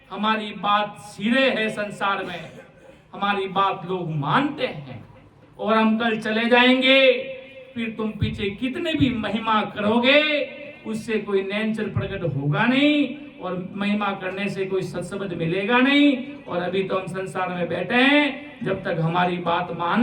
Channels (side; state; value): both; identical; correlation 1.00